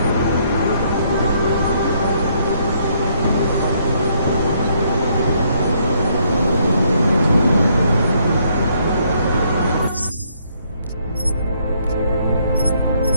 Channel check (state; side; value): inverted; both; correlation -0.69